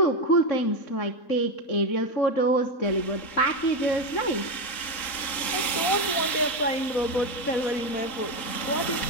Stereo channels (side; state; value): right; late; 3.8 ms